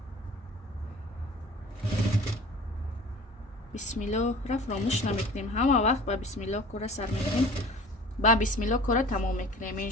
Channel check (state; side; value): normal; both; correlation 0.44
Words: бисмиллоҳ ра фаромӯш намекунем ҳама вақт ба бисмиллоҳ кора сар мекунем ба бисмиллоҳ кора тамом мекунем